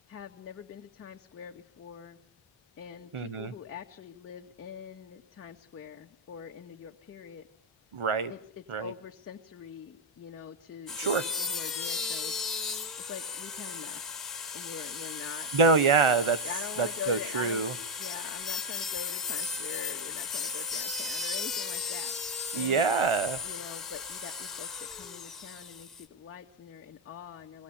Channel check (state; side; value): normal; both; correlation 0.05